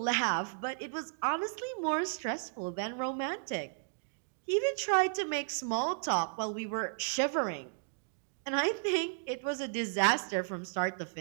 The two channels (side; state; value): left; silent; digital silence